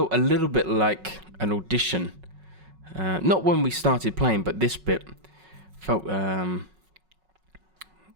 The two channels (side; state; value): left; late; 5.4 ms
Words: a little bit like an audition. Not when we started playing, but this bit felt, yeah,